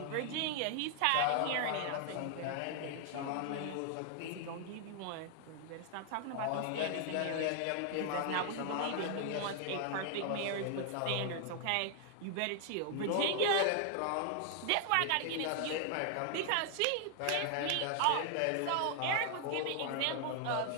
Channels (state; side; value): different; both; correlation 0.00